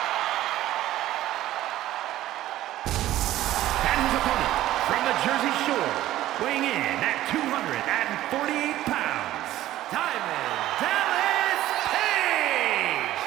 And his opponent from the Jersey Shore, weighing in at 248 pounds, Diamond Dallas Page!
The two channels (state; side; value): quieter; left; 14.3 dB